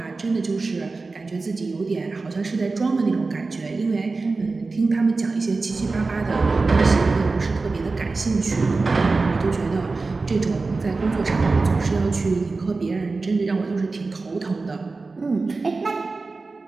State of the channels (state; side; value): quieter; left; 3.8 dB